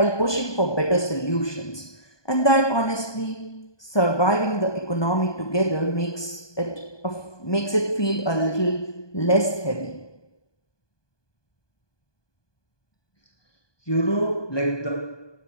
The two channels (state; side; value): late; right; 1.2 ms